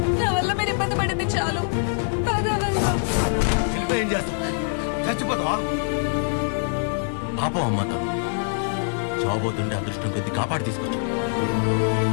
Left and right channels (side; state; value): right; silent; digital silence